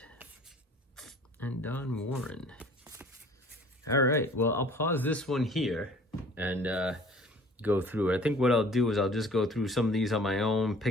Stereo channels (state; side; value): normal; both; correlation 0.50